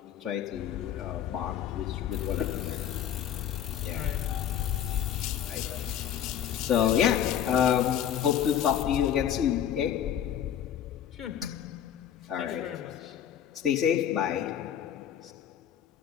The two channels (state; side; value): quieter; right; 9.8 dB